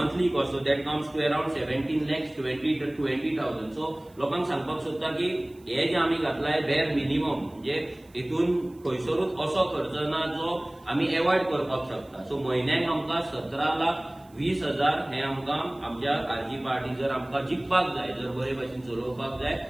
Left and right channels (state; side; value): noise; right; hiss, 30 dB below the sound